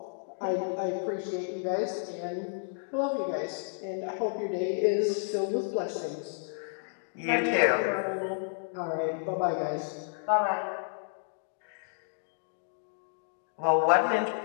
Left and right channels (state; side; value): silent; right; digital silence